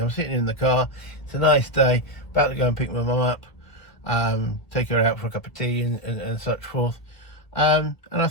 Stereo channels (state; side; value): late; right; 1.6 ms